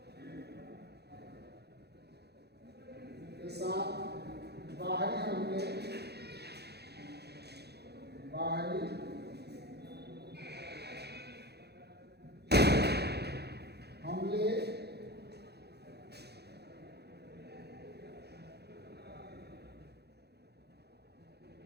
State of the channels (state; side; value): late; left; 0.48 ms